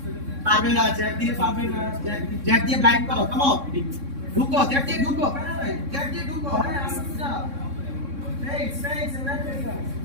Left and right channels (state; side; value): late; left; 3.6 ms